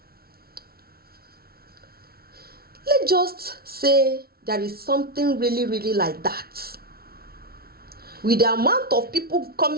Let's just say there is something really, really like that. With the amount of people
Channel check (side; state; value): left; late; 0.44 ms